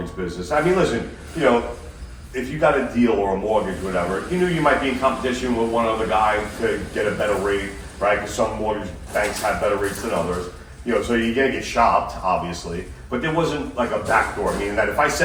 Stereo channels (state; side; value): identical; both; correlation 1.00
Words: business. I mean, listen, if you got a deal or a mortgage, whatever, you knew you might be in competition with one other guy to get a better rate, right? Because some mortgage banks have better rates than others. So you're gonna get shopped, obviously, but there wasn't like a backdoor, meaning that if I